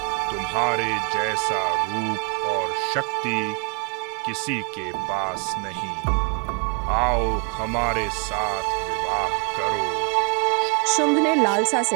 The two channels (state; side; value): quieter; left; 33.6 dB